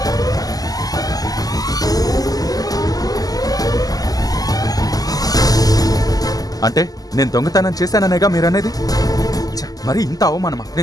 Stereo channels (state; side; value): late; right; 0.17 ms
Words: అంటే నేను దొంగతనం చేశాననేగా మీరనేది? మరి ఇంత అవమానమా?